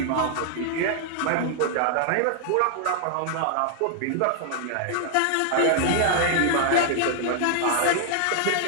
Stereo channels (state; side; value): different; both; correlation 0.00